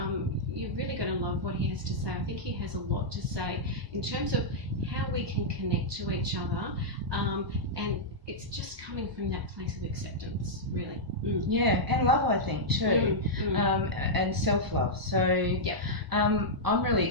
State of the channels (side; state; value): left; late; 1.0 ms